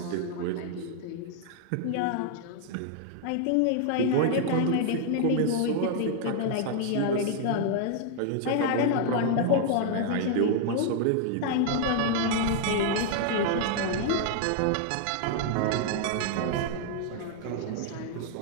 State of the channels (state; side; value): different; both; correlation 0.00